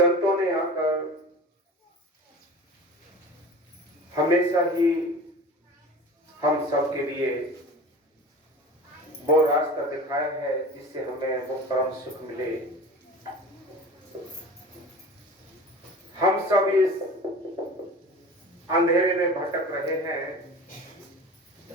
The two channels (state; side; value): normal; both; correlation 0.37